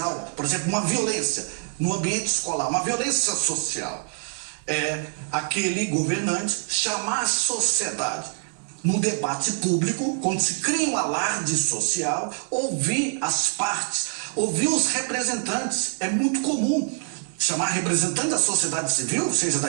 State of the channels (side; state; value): left; silent; 62 dB below the other